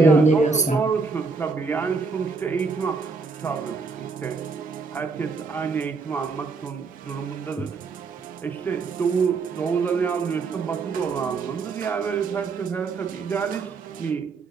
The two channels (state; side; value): quieter; left; 4.5 dB